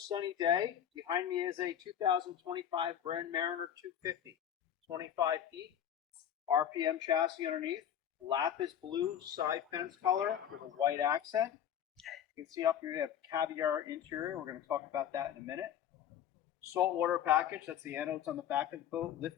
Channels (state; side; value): quieter; right; 9.7 dB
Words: day. Behind me is a 2025 Brand Mariner 250, 25 feet, RPM chassis underneath. Lapis blue side fence color with a white accent. You can see up here we have caviar interior. We're going to talk about that in a minute. Saltwater package, that's the anodes on the back of the boat.